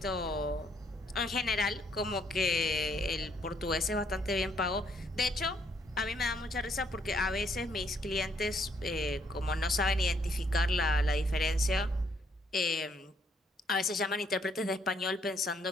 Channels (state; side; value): normal; both; correlation 0.70